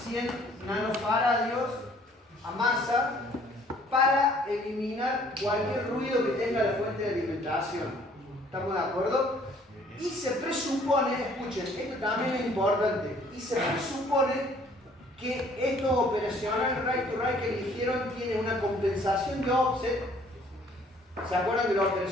100 nanofaradios a masa para eliminar cualquier ruido que tenga la fuente de alimentación. ¿Estamos de acuerdo? Y se presupone, escuchen, esto también es importante, y se presupone que estos operacionales right to right que eligieron tienen una compensación de offset. ¿Se acuerdan que los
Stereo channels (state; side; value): normal; both; correlation 0.58